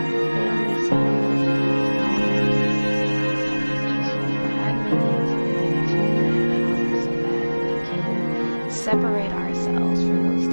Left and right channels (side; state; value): both; inverted; correlation -1.00